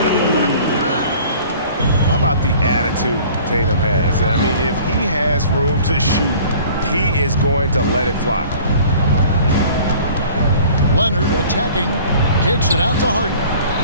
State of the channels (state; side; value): inverted; both; correlation -0.48